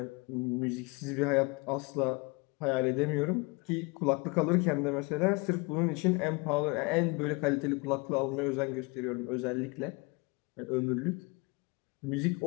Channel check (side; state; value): right; quieter; 28.4 dB